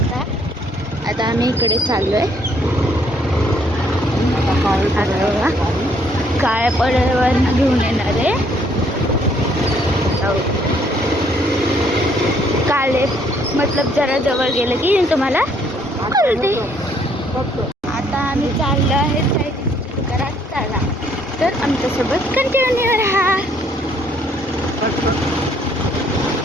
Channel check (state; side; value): normal; both; correlation 0.66